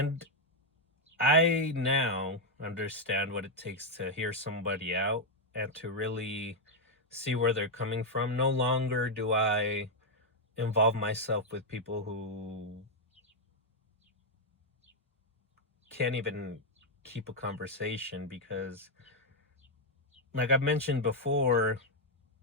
I now understand what it takes to hear somebody out and to really see where they're coming from. No longer do I involve myself with people who can't even keep a conversation, because like I've mentioned before,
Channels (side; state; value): both; normal; correlation 0.00